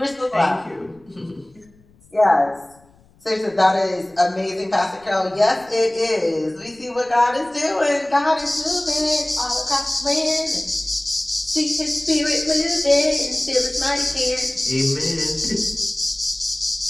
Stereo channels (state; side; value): noise; left; rumble, 30 dB below the sound